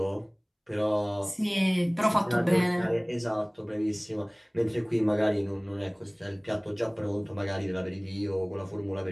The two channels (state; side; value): identical; both; correlation 1.00